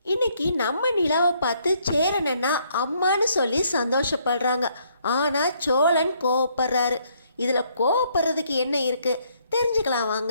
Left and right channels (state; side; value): inverted; both; correlation -0.69